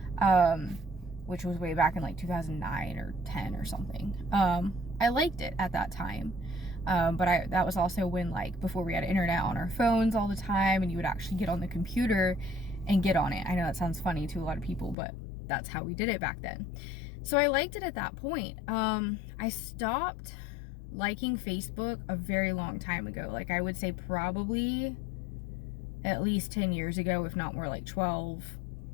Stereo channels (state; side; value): drops out; right; at 15.0 s